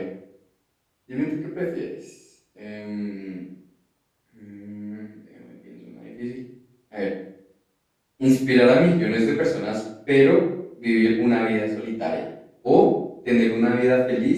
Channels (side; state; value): both; identical; correlation 1.00